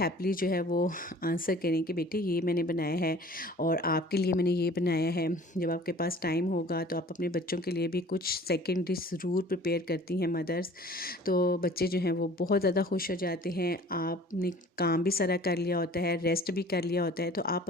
जो है वो आंसर करें कि बेटे ये मैंने बनाया है और आपके लिए मैंने ये बनाया है। जब आपके पास टाइम होगा तो आप अपने बच्चों के लिए भी कुछ सेकंड डिश ज़रूर प्रिपेयर करती हैं मदर्स, तो बच्चे जो हैं वो बहुत ज़्यादा खुश हो जाते हैं। आपने काम भी सारा कर लिया होता है, रेस्ट भी कर लिया होता है, तो आप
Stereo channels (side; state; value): both; normal; correlation 0.48